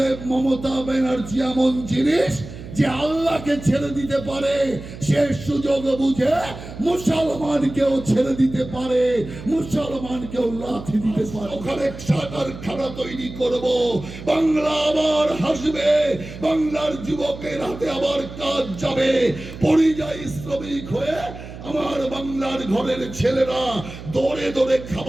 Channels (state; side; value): noise; right; hum, 13 dB below the sound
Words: মমতা ব্যানার্জি এমন জিনিস যে আল্লাহকে ছেড়ে দিতে পারে, সে সুযোগ বুঝে মুসলমানকেও ছেড়ে দিতে পারে, মুসলমানকেও লাথি দিতে পারে। ওখানে কারখানা তৈরি করব, বাংলা আবার হাসবে, বাংলার যুবকের হাতে আবার কাজ যাবে। পরিযায়ী শ্রমিক হয়ে আমার বাংলার ঘরের ছেলেরা দৌড়ে দৌড়ে